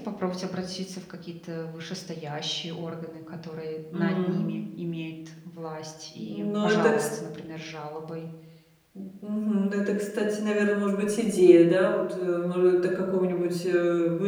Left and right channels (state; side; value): identical; both; correlation 1.00